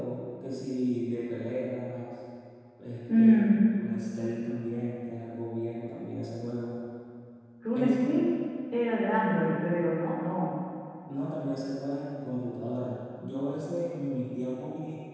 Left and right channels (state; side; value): identical; both; correlation 1.00